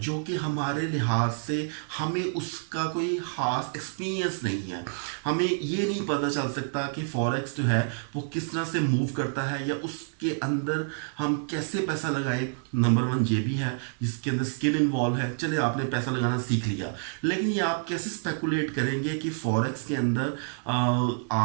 कि हमारे लिहाज से हमें उसका कोई ख़ास एक्सपीरियंस नहीं है। हमें ये नहीं पता चल सकता कि फॉरेक्स जो है वो किस तरह से मूव करता है या उसके अंदर हम कैसे पैसा लगाएं। नंबर वन ये भी है जिसके अंदर स्किल इन्वॉल्व है। चले आपने पैसा लगाना सीख लिया, लेकिन ये आप कैसे स्पेकुलेट करेंगे कि फॉरेक्स के अंदर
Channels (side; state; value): left; silent; digital silence